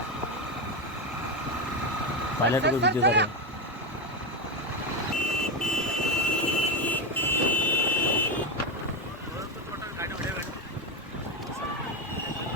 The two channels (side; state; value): both; normal; correlation 0.12